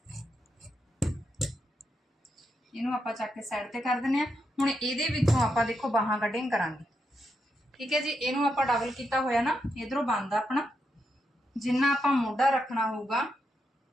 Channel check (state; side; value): normal; both; correlation 0.82